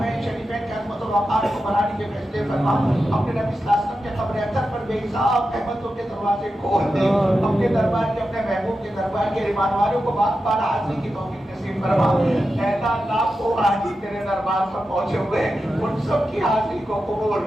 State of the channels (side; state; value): both; normal; correlation 0.90